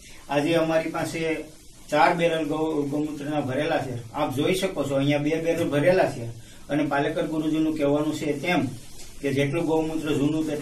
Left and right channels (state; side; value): identical; both; correlation 1.00